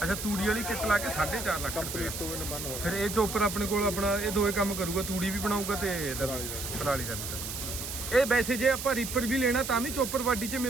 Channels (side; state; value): right; noise; hiss, 6 dB below the sound